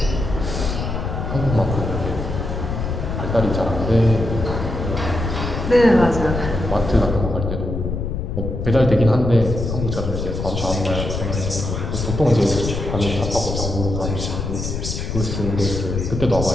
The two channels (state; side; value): noise; left; rumble, 3 dB below the sound